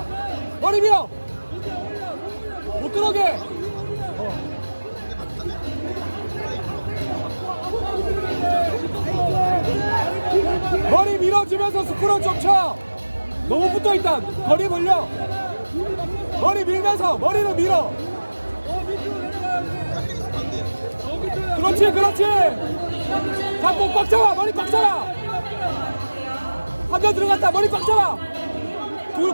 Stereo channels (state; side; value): inverted; both; correlation -1.00